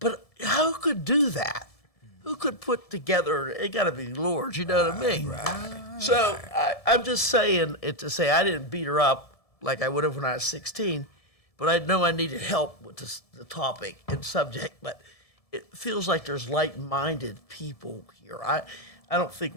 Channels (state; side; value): late; right; 1.7 ms